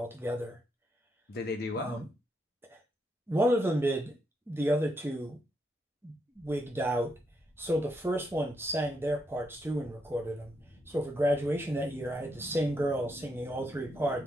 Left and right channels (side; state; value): both; normal; correlation 0.79